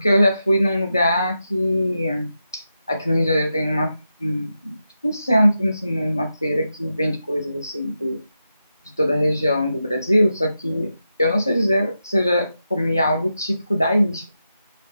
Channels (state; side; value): inverted; both; correlation -0.88